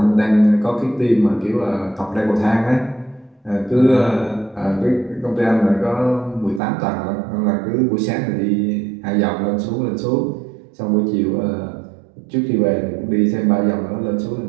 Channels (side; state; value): left; drops out; at 6.6 s